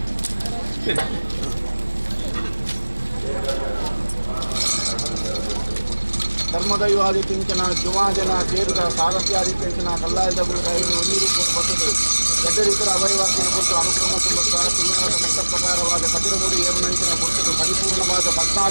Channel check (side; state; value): both; inverted; correlation -1.00